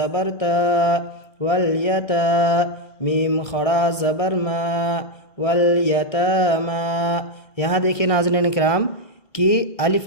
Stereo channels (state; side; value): late; right; 1.6 ms